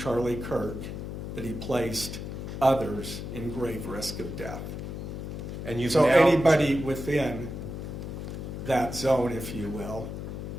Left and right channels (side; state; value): left; noise; hum, 6 dB below the sound